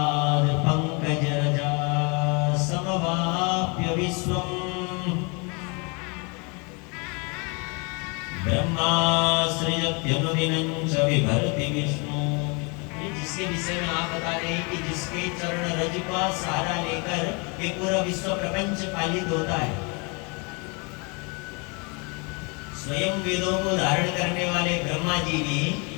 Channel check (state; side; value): quieter; right; 32.0 dB